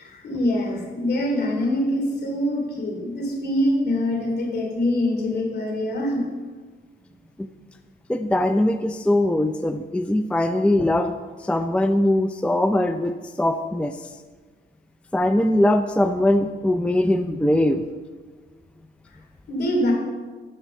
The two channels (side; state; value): both; normal; correlation 0.86